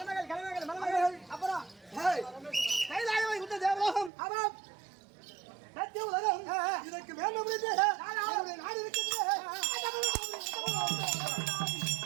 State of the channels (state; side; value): drops out; left; at 4.1 s